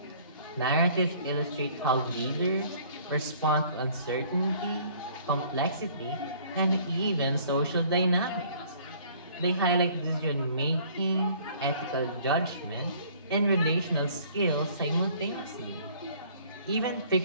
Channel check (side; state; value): both; inverted; correlation -0.55